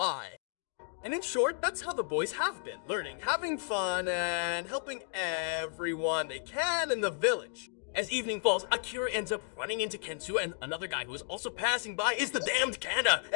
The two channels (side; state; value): right; silent; digital silence